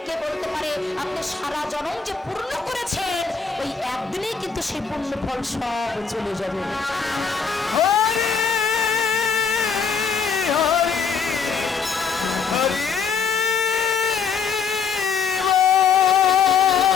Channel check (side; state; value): right; quieter; 5.9 dB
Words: কে বলতে পারে আপনি সারা জনম যে পূর্ণ করেছেন ওই একদিনেই কিন্তু সেই পূর্ণ ফল সব চলে যাবে।